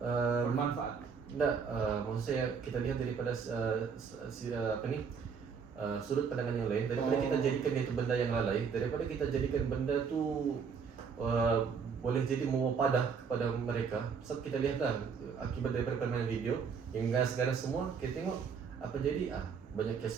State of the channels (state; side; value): quieter; left; 6.1 dB